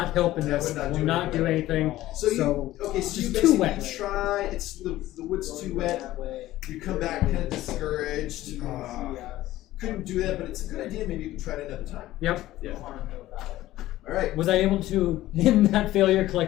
help in this. That will not do anything. So you just basically too wet. try. It's the wood's too wet. You come back kind of discouraged. Couldn't do that, but it's a good idea. Maybe you can try it another time. Yep. Yeah. All right. Was I able to, in that failure,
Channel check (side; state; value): right; quieter; 15.5 dB